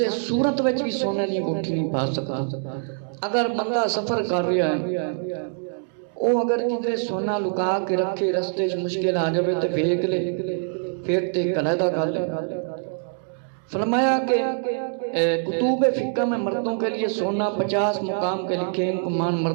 صورت وچ بھی سونے دی انگوٹھی نہیں پا سکتا۔ اگر بندہ سفر کر رہا ہے او اگر کدھر سونا لکا کے رکھے رستے مشکل آ جائے تو پھینک لے، پھر تے علیحدہ کر لے۔ فرمایا کہ کتب فقہ میں مردوں کے لیے سونا 50 مقام کے لکھے، ان کو مان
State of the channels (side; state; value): left; silent; 62 dB below the other